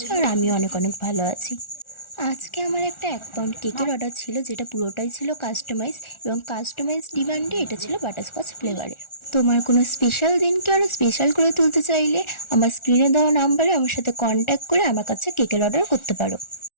আর আমিও অনেক অনেক ভালো আছি। আজকে আমার একটা 1 পাউন্ড কেকের অর্ডার ছিল, যেটা পুরোটাই ছিল কাস্টমাইজ, এবং কাস্টমাইজ ডিমান্ডে এটা ছিল বাটারস্কচ ফ্লেভারের। তোমার কোনো স্পেশাল দিনকে আরও স্পেশাল করে তুলতে চাইলে আমার স্ক্রিনে দেওয়া নাম্বারে আমার সাথে কন্ট্যাক্ট করে আমার কাছে কেকের অর্ডার করতে পারো।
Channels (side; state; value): right; late; 1.4 ms